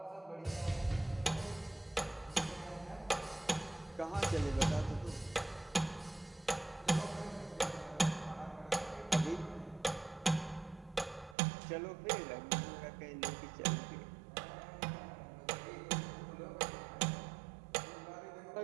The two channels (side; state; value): left; drops out; at 11.4 s